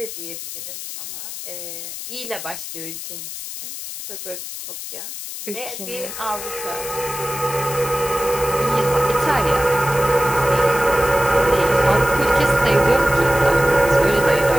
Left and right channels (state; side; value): noise; left; hiss, 9 dB below the sound